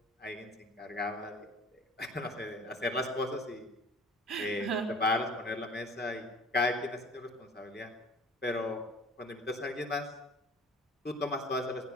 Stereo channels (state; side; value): normal; both; correlation 0.47